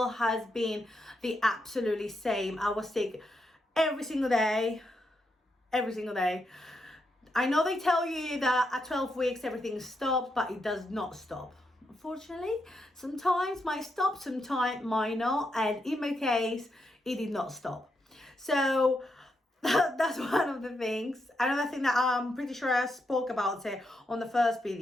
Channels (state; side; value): normal; both; correlation 0.82